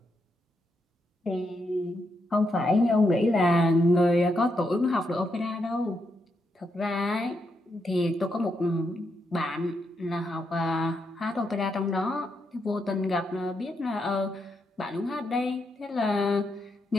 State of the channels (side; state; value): both; normal; correlation 0.81